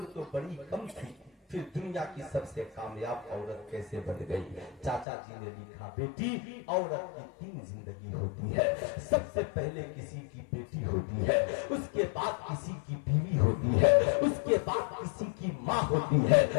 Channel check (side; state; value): right; drops out; at 5.1 s